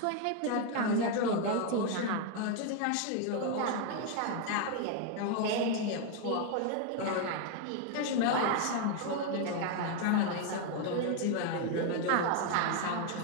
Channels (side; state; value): both; different; correlation 0.01